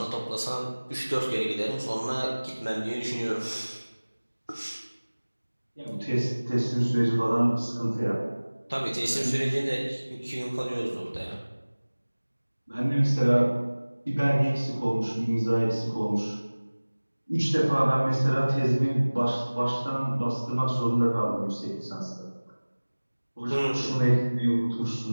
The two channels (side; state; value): both; inverted; correlation -1.00